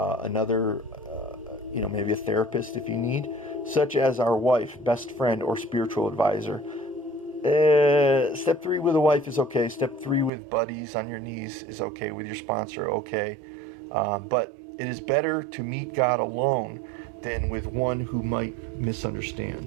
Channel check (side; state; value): left; drops out; at 10.3 s